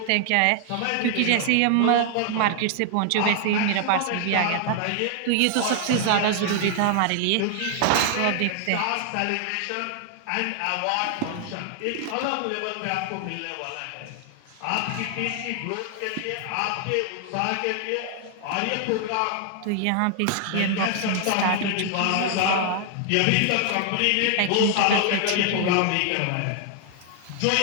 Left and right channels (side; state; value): both; different; correlation 0.00